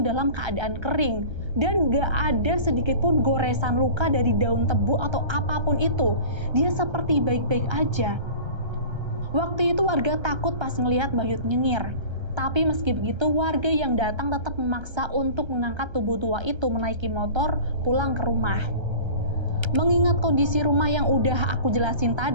dalam keadaan kering dan gak ada sedikit pun goresan luka dari daun tebu atau apapun itu. Dia seperti baik-baik aja. Waktu itu warga takut pas ngelihat Bahyut nyengir. Tapi meski begitu, warga yang datang tetap memaksa untuk mengangkat tubuh tua itu menaiki motor pulang ke rumah. Mengingat kondisi rumah yang udah aku jelasin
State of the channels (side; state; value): left; late; 1.3 ms